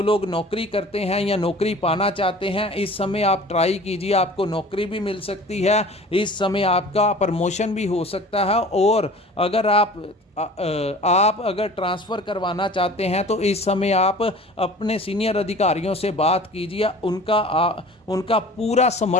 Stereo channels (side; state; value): both; normal; correlation 0.44